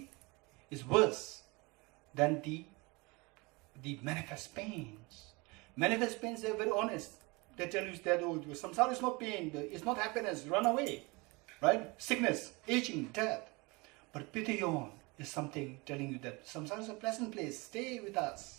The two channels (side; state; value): left; quieter; 26.0 dB